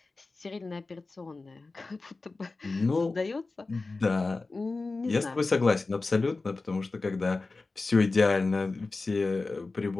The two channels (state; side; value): quieter; right; 3.6 dB